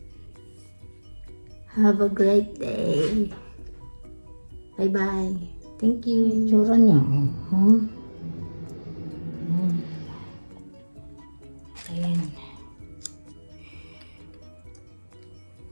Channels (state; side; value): inverted; both; correlation -1.00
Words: Have a great day. Bye-bye. Thank you. Itsura niya. Ayan.